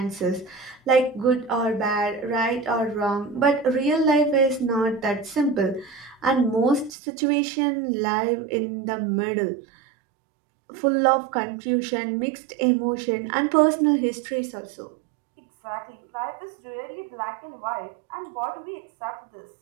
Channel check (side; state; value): left; drops out; at 6.9 s